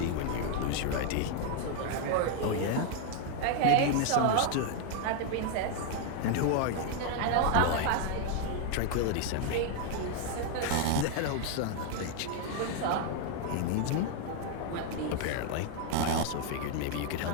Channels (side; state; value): both; different; correlation 0.00